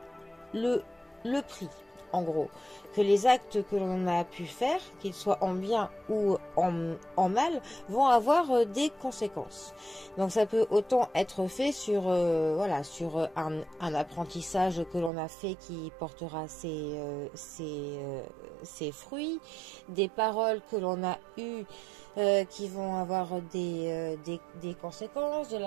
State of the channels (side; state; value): left; drops out; at 15.1 s